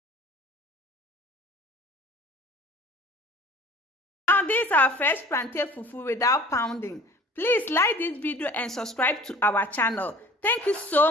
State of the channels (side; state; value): both; normal; correlation 0.47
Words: Now these are fresh plantain fufu without pounding. Please like this video and subscribe to our channel. Thank you so